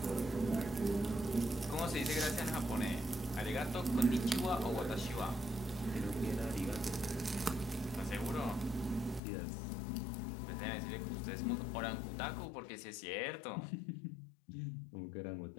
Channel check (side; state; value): right; drops out; at 9.2 s